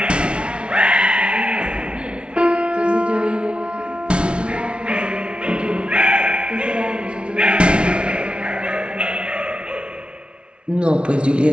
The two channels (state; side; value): late; left; 0.058 ms